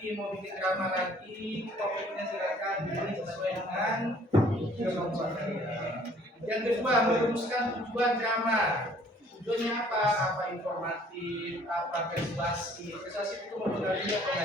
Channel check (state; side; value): normal; both; correlation 0.57